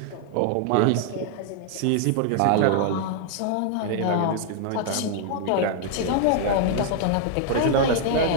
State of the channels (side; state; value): both; different; correlation 0.00